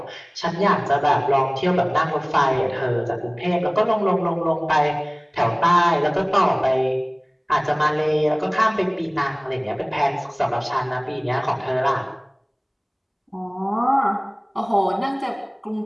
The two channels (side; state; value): both; identical; correlation 1.00